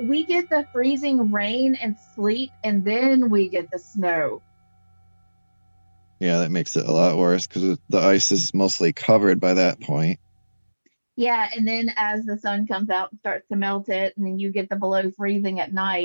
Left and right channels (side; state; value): both; inverted; correlation -1.00